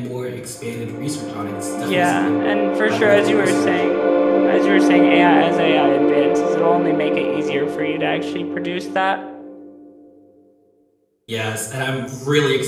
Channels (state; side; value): identical; both; correlation 1.00